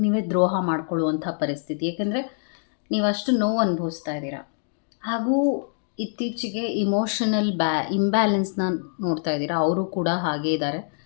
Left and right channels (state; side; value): silent; right; digital silence